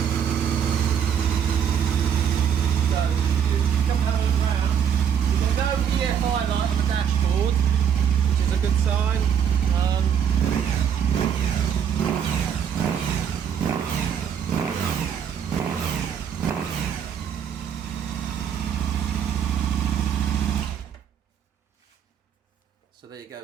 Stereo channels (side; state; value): left; quieter; 8.2 dB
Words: EFI light on the dashboard, which is a good sign. So there you